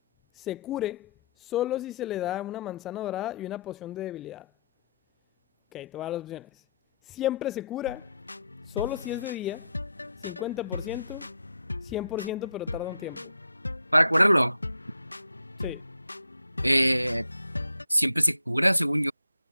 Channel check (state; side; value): inverted; both; correlation -0.72